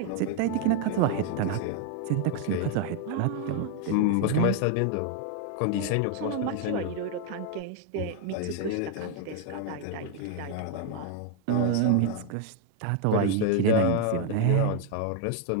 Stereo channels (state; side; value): different; both; correlation 0.01